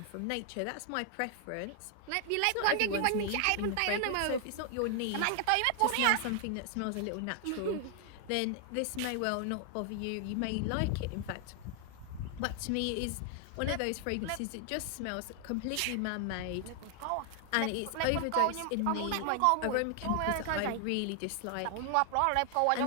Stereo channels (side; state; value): both; different; correlation 0.00